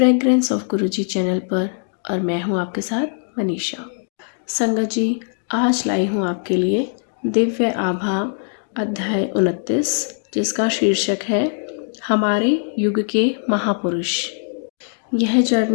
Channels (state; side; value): silent; right; digital silence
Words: ऑफ गुरुजी चैनल पर और मैं हूं आपके साथ मनीषा। संगत जी, आज लाई हूं आपके लिए दिव्य आभा अध्याय 29, जिसका शीर्षक है हमारे युग के महापुरुष। यह